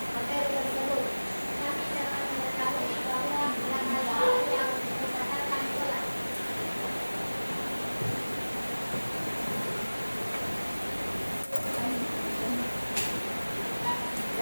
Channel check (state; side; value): inverted; both; correlation -1.00